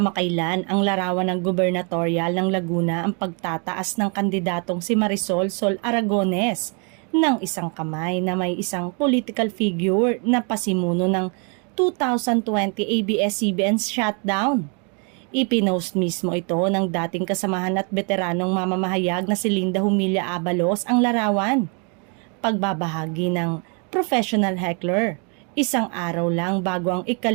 ang larawan ng gubernatorial ng Laguna ang pagtataas ng kandidatong si Marisol Sol Aragones ng isang kamay na may isang political figure na pasimuno ng 2020 ABS-CBN shutdown. Ipinost mismo ito ng dating kasamahan at veteranong mamamahayag na si Linda Humilla Abalos ang larawan. Pagbabahagi ng professional heckler. Isang araw lang bago ang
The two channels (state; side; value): quieter; left; 36.9 dB